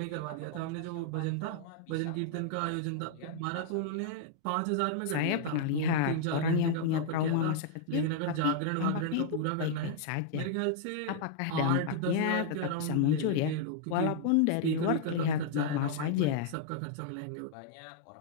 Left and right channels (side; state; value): both; different; correlation -0.01